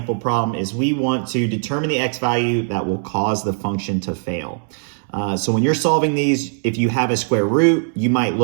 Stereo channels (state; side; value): silent; left; 66 dB below the other